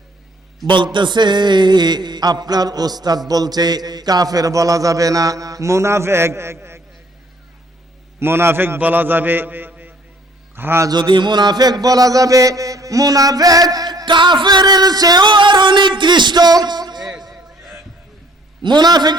বলতেছে আপনার ওস্তাদ বলছে কাফের বলা যাবে না, মুনাফিক বলা যাবে। হ্যাঁ, যদি মুনাফিক বলা যাবে, মুনাফিক কাফেরের চেয়েও আরো নিকৃষ্ট।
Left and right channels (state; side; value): normal; both; correlation 0.59